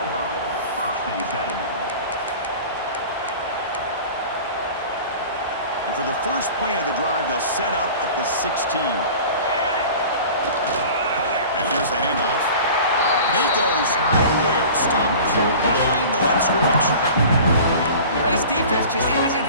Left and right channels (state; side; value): inverted; both; correlation -0.40